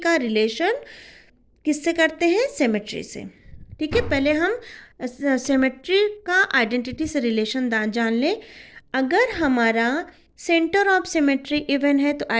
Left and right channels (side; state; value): both; identical; correlation 1.00